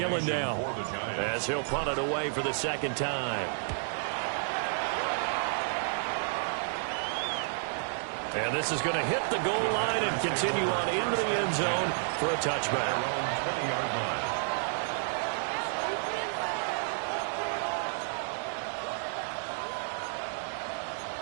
down as he'll punt it away for the 2nd time. And this is going to hit the goal line and continue on into the end zone for a touchback.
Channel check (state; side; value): silent; left; digital silence